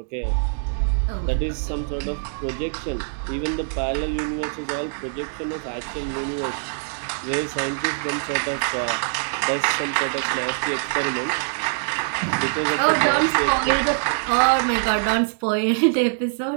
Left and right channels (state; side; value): silent; left; digital silence